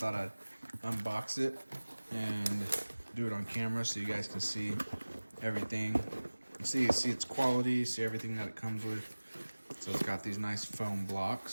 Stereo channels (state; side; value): inverted; both; correlation -1.00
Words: I'd unbox it and do it on camera so you guys can see everything. See its quality, see everything that it comes with. So it's got these nice foam